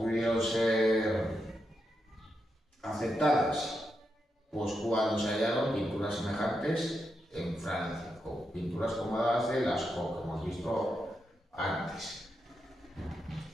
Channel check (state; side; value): normal; both; correlation 0.85